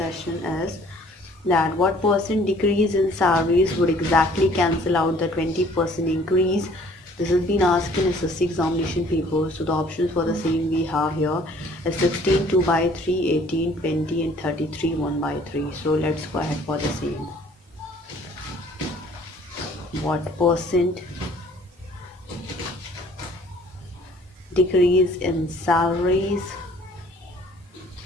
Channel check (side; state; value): both; normal; correlation 0.56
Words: is that what percent decrease in salaries would exactly cancel out the 20% increase? This has been asked in SSC examination paper. So the options for the same we have here is 16 2 by 3, 18, 20, and 33 1 by 3. So let's go ahead for the same. What percent decrease in salaries